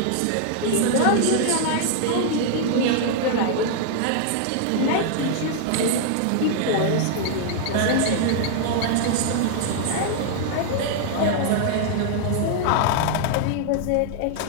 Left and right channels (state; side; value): different; both; correlation -0.01